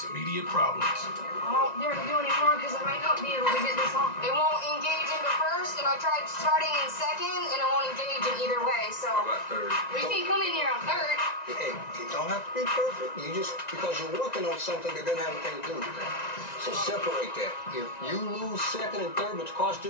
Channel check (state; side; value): late; right; 1.9 ms